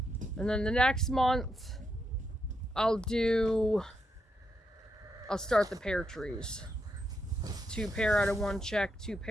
And then the next month, I'll start the pear trees. 2 pear out of 1 check, 2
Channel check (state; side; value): normal; both; correlation 0.82